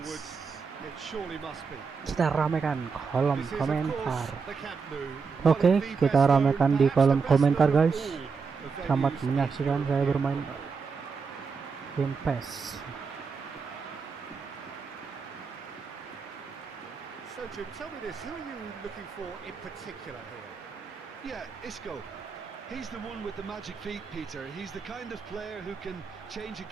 woods. It surely must be. Kita ramekan kolom This is, of course, komentar. the Camp Nou, one Oke, of the kita best known, ramekan di perhaps kolom the best komentar known of guys. all the Selamat venues in menyaksikan saya European bermain football. game PES. So Jim, tell me this, who are you looking for in particular here? Yeah, Isco. He's the one with the magic feet, Peter. He's the kind of player who can change a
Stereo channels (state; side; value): quieter; left; 5.2 dB